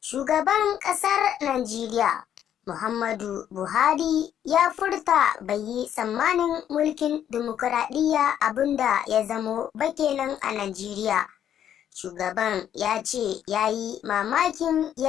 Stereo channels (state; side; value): quieter; right; 10.0 dB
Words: Shugaban ƙasar Najeriya Muhammadu Buhari ya furta bai yi tsammanin mulkin dimokuraɗiyya abinda ya zamo ba kenan a Najeriya. Shugaban ya ce ya yi mamakin